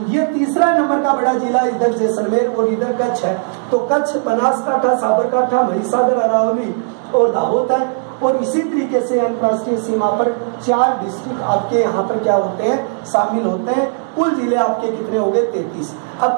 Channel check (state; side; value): silent; left; digital silence